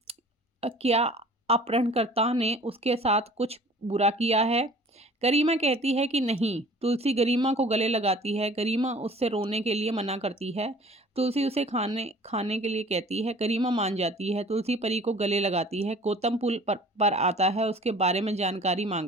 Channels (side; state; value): both; normal; correlation 0.48